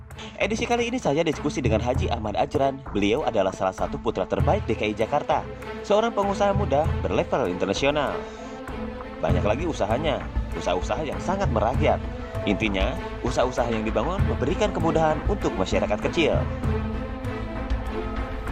edisi kali ini saya diskusi dengan Haji Ahmad Ajran. Beliau adalah salah satu putra terbaik DKI Jakarta, seorang pengusaha muda berlevel internasional. Banyak lagi usahanya, usaha-usaha yang sangat merakyat. Intinya, usaha-usaha yang dibangun memberikan kemudahan untuk masyarakat kecil.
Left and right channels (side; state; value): both; identical; correlation 1.00